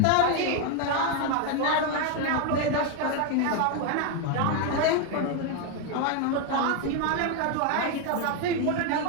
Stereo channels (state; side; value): different; both; correlation 0.01